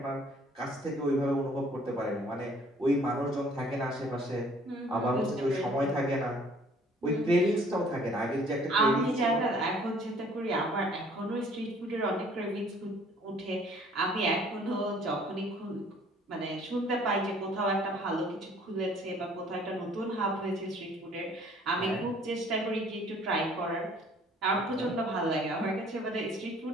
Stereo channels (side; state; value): both; normal; correlation 0.56